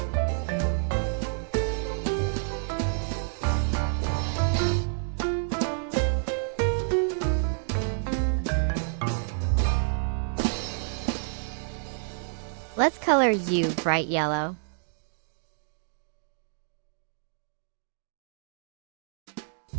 Let's color U bright yellow.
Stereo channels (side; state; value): left; silent; digital silence